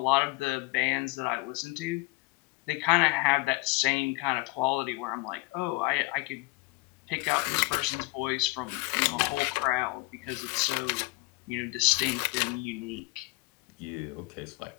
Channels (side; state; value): right; quieter; 23.0 dB